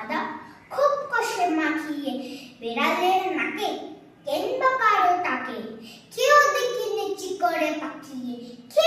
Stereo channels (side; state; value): both; identical; correlation 1.00